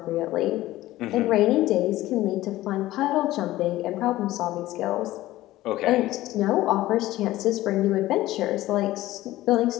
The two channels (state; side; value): quieter; right; 16.2 dB